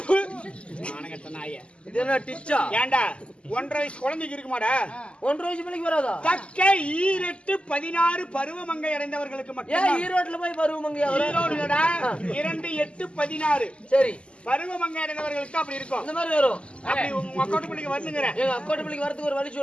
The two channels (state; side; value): late; right; 0.054 ms